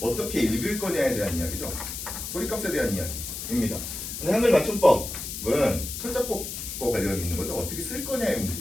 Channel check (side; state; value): left; noise; hiss, 7 dB below the sound